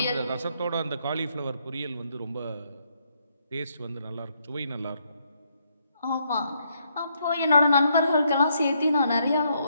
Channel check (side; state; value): both; inverted; correlation -0.73